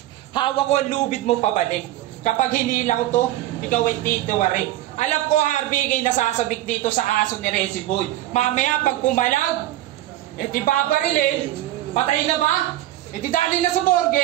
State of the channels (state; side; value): quieter; left; 14.6 dB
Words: Hawak ko ang lubid mo pabalik. Kapag hinila ko to, ikaw ay titiwarik. Alam ko Harvey kay nasasabik dito sa aso ni Resi Boy. Mamaya pag pumalag, di babarilin. Patay na ba? Di dali na sa